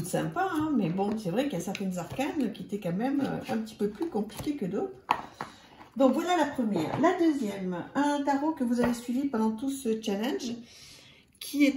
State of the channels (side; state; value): both; identical; correlation 1.00